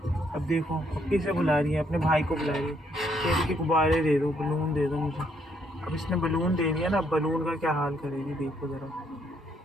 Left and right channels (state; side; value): normal; both; correlation 0.71